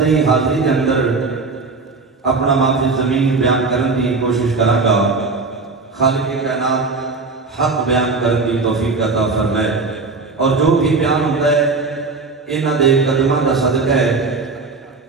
حاضری کے اندر اپنا معافی زمین بیان کرنے کی کوشش کروں گا۔ خالق کائنات حق بیان کرنے کی توفیق عطا فرمائے، اور جو بھی بیان ہوتا ہے انہاں دے قدماں دا صدقہ ہے۔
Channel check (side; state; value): left; quieter; 4.1 dB